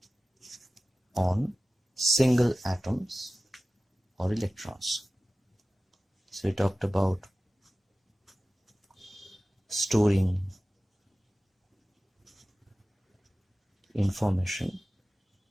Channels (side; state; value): both; normal; correlation 0.96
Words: on single atoms or electrons. So he talked about storing information